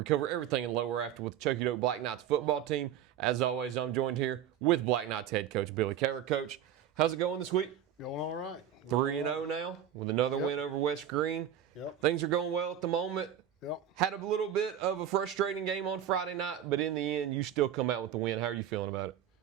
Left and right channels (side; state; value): left; quieter; 9.9 dB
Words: cover everything in lower after with the Chuckey-Doak Black Knights football team. As always, I'm joined here with Black Knights head coach Billy Kaylor. Coach, how's it going this week? Going all right. 3-0 now with another win over West Greene. Yep. Things are going well at the moment. Yep. Had a little bit of a frustrating game on Friday night, but in the end, you still come out with the win. How are you feeling about it?